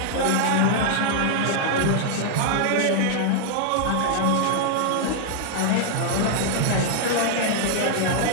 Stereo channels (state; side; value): different; both; correlation -0.01